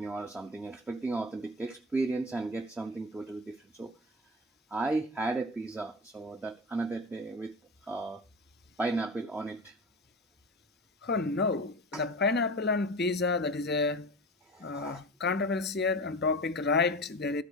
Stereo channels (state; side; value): normal; both; correlation 0.30